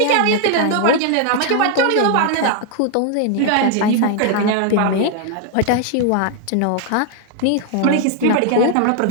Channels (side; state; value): both; different; correlation -0.01